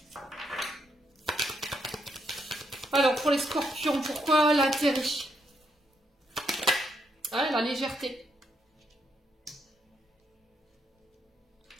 Alors, pour les scorpions, pourquoi l'intérêt? Ouais, la légèreté.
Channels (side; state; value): both; normal; correlation 0.76